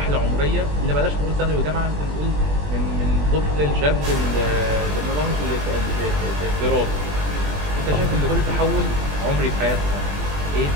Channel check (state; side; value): late; left; 20 ms